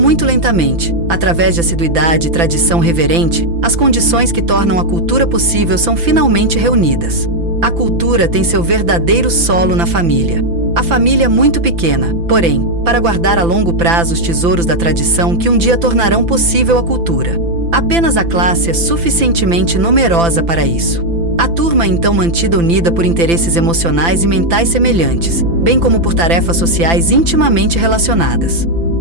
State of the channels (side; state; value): left; late; 5.9 ms